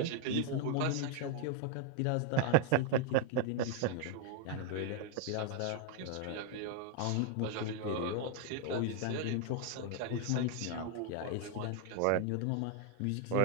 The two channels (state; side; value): different; both; correlation 0.00